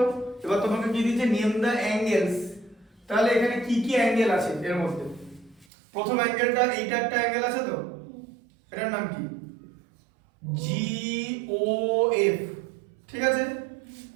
এবার তোমাকে কি দিয়েছে নেম দ্য অ্যাঙ্গেলস, তাহলে এখানে কি কি অ্যাঙ্গেল আছে এর মধ্যে? প্রথম অ্যাঙ্গেলটা এইটা একটা অ্যাঙ্গেল আছে তো, এটার নাম কি? GOF, ঠিক আছে।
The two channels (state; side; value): drops out; left; at 5.7 s